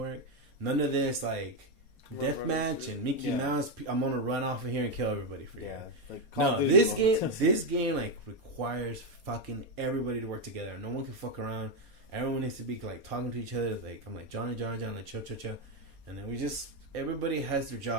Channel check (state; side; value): late; left; 4.3 ms